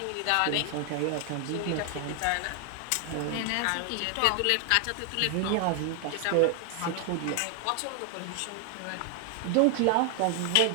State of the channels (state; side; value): different; both; correlation 0.00